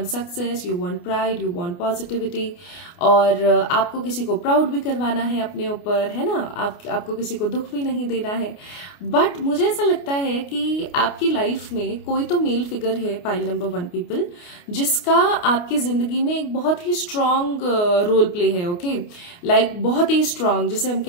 success, you want pride, you want positivity, और आपको किसी को प्राउड भी करवाना है अपने ऊपर, है ना। आपको किसी को दुख भी नहीं देना है। बट मुझे ऐसा लगता है कि आपकी लाइफ में कोई तो मेल फिगर है, पाइल नंबर 1 पीपल, जिसका आपकी जिंदगी में एक बहुत ही स्ट्रांग रोल प्ले है, ओके। लाइक बहुत ही स्ट्रांग, जैसे हम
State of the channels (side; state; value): right; late; 29 ms